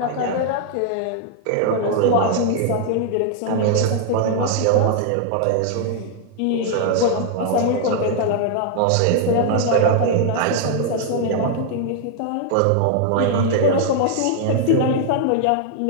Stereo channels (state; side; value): different; both; correlation 0.00